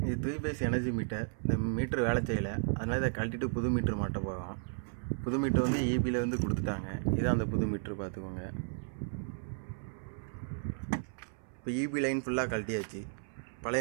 இது 3 phase எனர்ஜி மீட்டர். இந்த மீட்டர் வேலை செய்யலை, அதனால் இதை கழட்டிட்டு புது மீட்ரு மாட்ட போகிறோம். புது மீட்ரு வந்து ஈபியில் வந்து கொடுத்துட்டாங்க. இதான் அந்த புது மீட்ரு, பார்த்துக்கோங்க. இப்போ ஈபி லைன் ஃபுல்லாக கழட்டியாச்சு,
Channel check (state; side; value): silent; left; 55 dB below the other